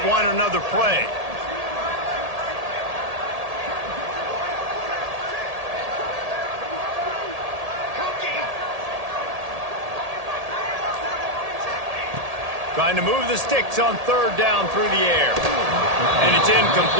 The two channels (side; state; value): left; late; 1.8 ms